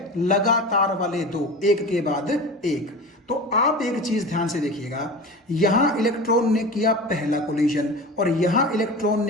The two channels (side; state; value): both; normal; correlation 0.32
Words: लगातार वाले दो, एक के बाद एक। तो आप एक चीज ध्यान से देखिएगा, यहां इलेक्ट्रॉन ने किया पहला कोलिजन और यहां इलेक्ट्रॉन